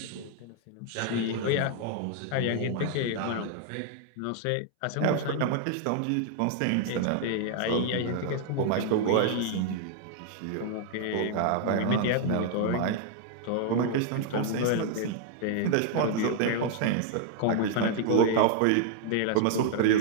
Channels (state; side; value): different; both; correlation 0.00